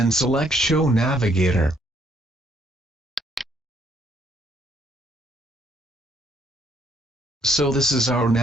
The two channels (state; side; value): normal; both; correlation 0.69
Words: select Show Navigator. So this is our